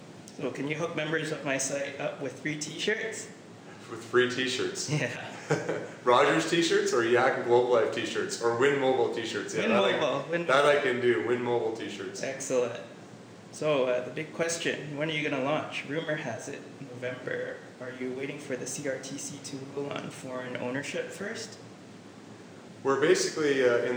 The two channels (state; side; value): identical; both; correlation 1.00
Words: can you hook members of my site up with free t-shirts? With free t-shirts? Yeah. Rogers t-shirts or Yak and Globalive t-shirts or Win Mobile t-shirts? Yeah, that I can do, Win Mobile t-shirts. Excellent. So the big question, when are you going to launch? Rumor has it November. Are you waiting for the CRTC to rule on foreign ownership first? We're basically